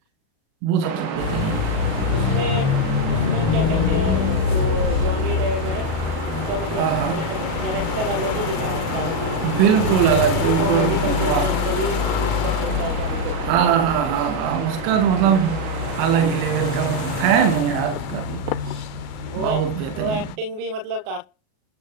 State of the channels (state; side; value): late; left; 37 ms